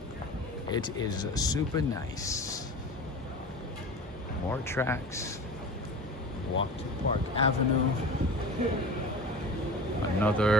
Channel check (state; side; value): normal; both; correlation 0.35